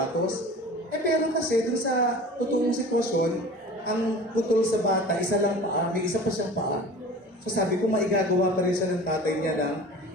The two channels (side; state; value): both; normal; correlation 0.40